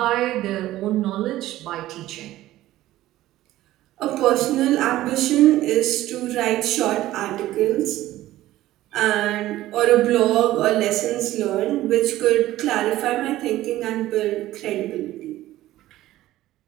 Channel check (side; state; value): left; quieter; 15.2 dB